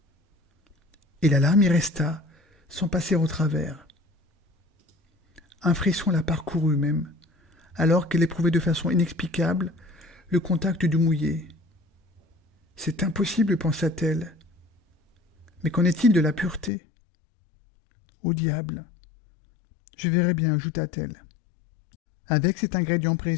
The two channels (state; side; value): drops out; right; at 16.7 s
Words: Et la larme y resta, sans passer au travers. Un frisson la parcourut même, alors qu'elle éprouvait de façon inexplicable le contact du mouillé. C'est impossible, pensa-t-elle. Mais qu'en est-il de la pureté? Au diable! Je verrai bien, ajouta-t-elle. Avec cet ingrédient